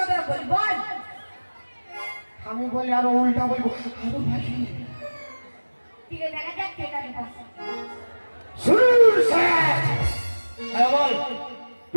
বল, বল। আমি বলি আরো উল্টা বলবো, আরো ভাষী। ঠিক আছে, দেখা যাক কে কাকে পাচ্ছে। শুরু স্যার। হ্যাঁ বল।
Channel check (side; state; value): both; inverted; correlation -1.00